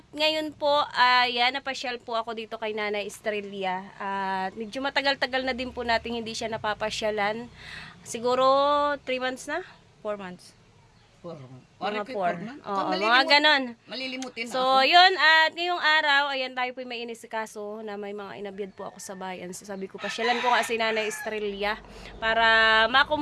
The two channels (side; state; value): both; identical; correlation 1.00